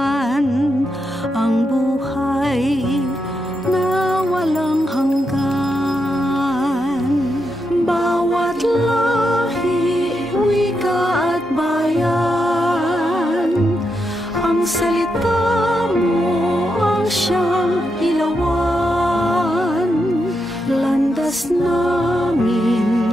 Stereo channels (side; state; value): both; normal; correlation 0.84